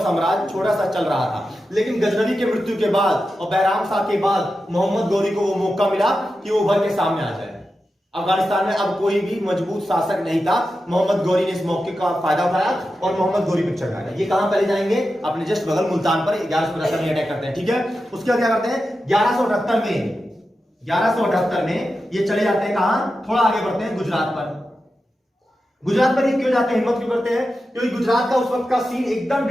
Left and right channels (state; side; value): normal; both; correlation 0.91